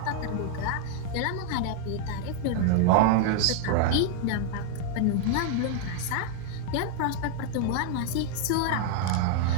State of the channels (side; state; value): both; different; correlation 0.00